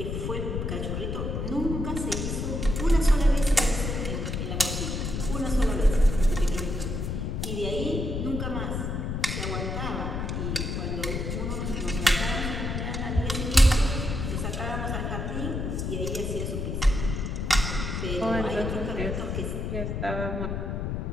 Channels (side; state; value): left; noise; rumble, 2 dB below the sound